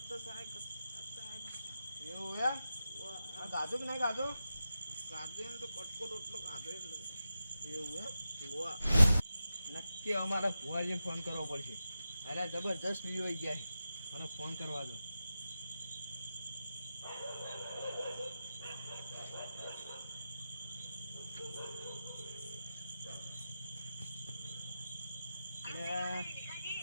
થાય એવું એમ આ ગાધું કે નહીં ગાધું ગાધું એમ તો કટકો રોટલો ગાધો એટલે એવું એમ હોવા નક્કી અમારે ભુવાજીને ફોન કરવો પડશે અરે જબરજસ્ત વિડીયો આવી ગયા છે મને ફોન કરવા દો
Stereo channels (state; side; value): inverted; both; correlation -0.91